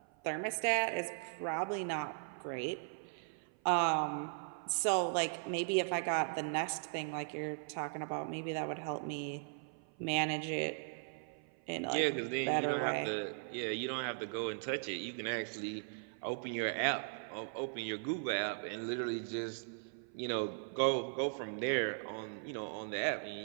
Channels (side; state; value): left; silent; 52 dB below the other